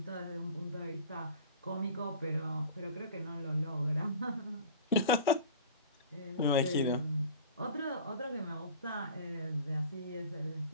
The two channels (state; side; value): inverted; both; correlation -0.41